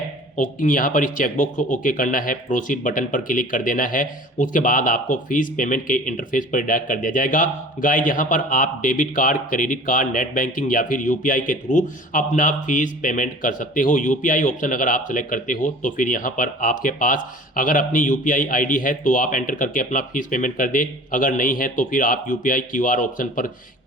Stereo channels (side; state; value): both; normal; correlation 0.43